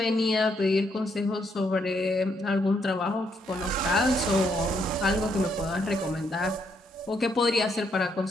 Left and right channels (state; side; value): normal; both; correlation 0.75